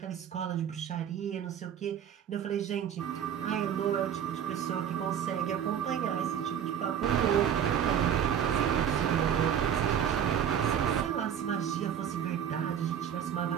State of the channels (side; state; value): left; quieter; 9.0 dB